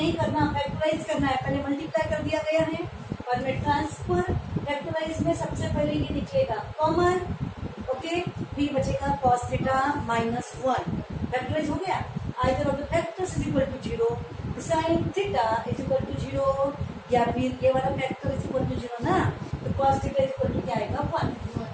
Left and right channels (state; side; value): identical; both; correlation 1.00